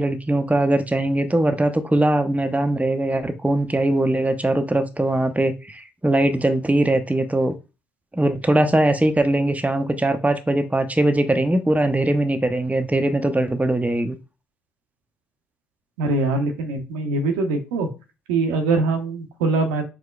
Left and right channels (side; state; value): both; normal; correlation 0.85